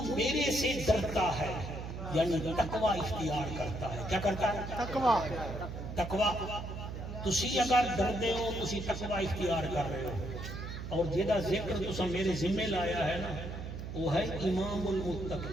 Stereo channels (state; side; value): noise; right; hum, 7 dB below the sound